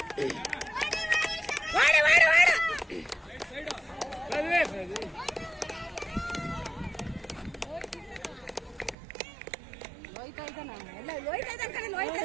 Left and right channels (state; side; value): drops out; left; at 9.0 s